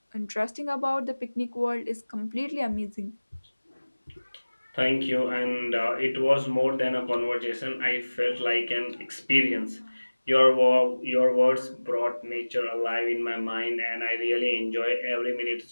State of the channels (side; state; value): both; inverted; correlation -1.00